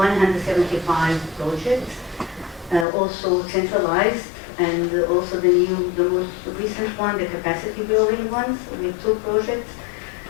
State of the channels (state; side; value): drops out; right; at 2.9 s